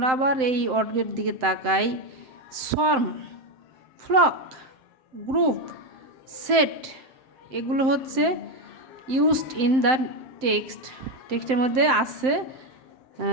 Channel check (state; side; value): late; left; 7.7 ms